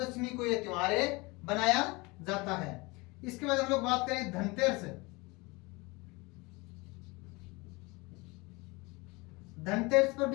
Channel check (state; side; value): quieter; right; 25.1 dB